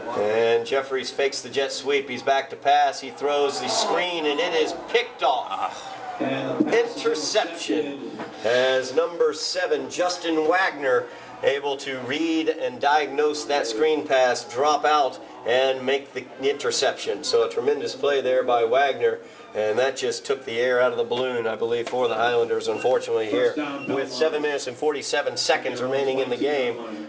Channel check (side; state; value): both; identical; correlation 1.00